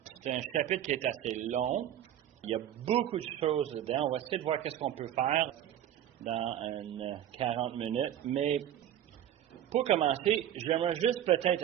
c'est un chapitre qui est assez long. Il y a beaucoup de choses dedans. On va essayer de voir qu'est-ce qu'on peut faire dans 40 minutes. Mais pour commencer, j'aimerais juste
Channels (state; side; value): quieter; left; 11.1 dB